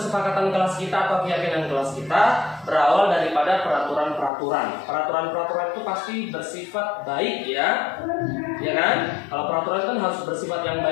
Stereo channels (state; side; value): drops out; right; at 4.3 s